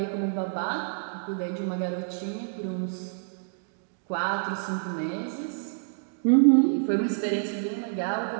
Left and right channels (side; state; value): left; silent; digital silence